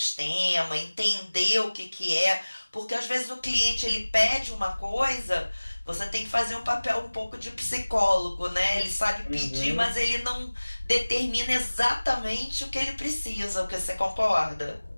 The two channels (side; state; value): both; inverted; correlation -1.00